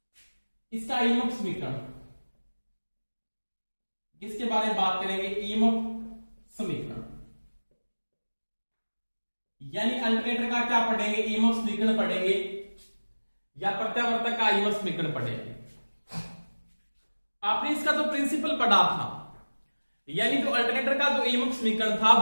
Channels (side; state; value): both; inverted; correlation -1.00